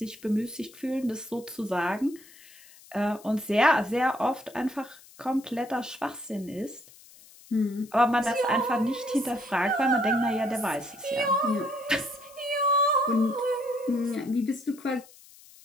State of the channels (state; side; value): noise; left; hiss, 23 dB below the sound